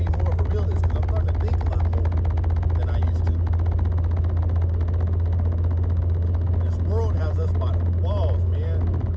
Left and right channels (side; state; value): both; identical; correlation 1.00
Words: more of a realist because I'm starting to think a lot more than I used to. This world has us by the balls, man.